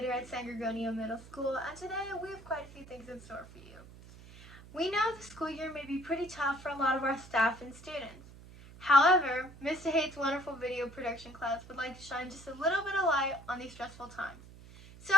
at San Gregorio Middle School, and today we have quite a few things in store for you. We know the school year may be pretty tough for a lot of our staff and students. However, Mr. Hate's wonderful video production class would like to shine just a little bit of light on these stressful times. So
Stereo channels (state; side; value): noise; right; hum, 18 dB below the sound